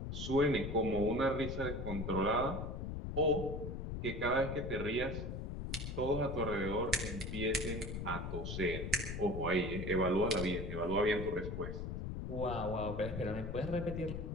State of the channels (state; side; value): noise; left; rumble, 5 dB below the sound